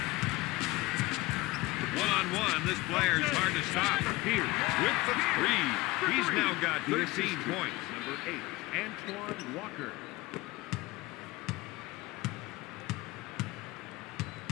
One-on-one, this player is hard to stop. Pierce with the 3. He's now got 13 points. Number 8. Antoine Walker.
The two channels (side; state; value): right; quieter; 20.5 dB